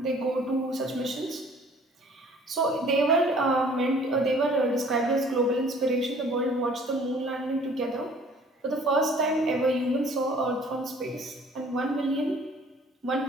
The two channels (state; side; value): normal; both; correlation 0.53